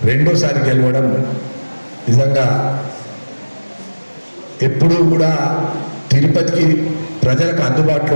రెండోసారి గెలవడం నిజంగా ఎప్పుడూ కూడా తిరుపతికి ప్రజలకు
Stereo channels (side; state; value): both; inverted; correlation -1.00